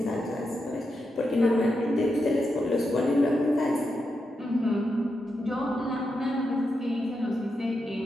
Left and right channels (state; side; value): normal; both; correlation 0.86